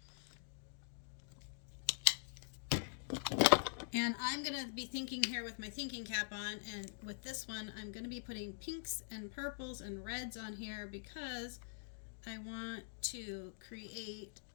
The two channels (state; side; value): silent; right; digital silence